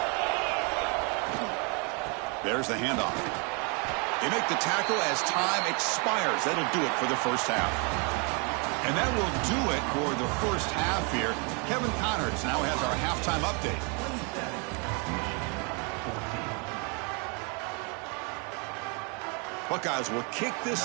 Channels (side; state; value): left; quieter; 34.1 dB